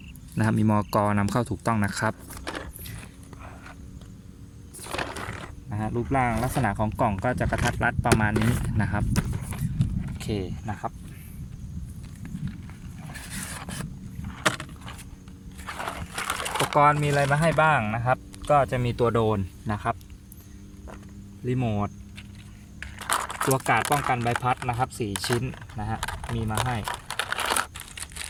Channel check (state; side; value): identical; both; correlation 1.00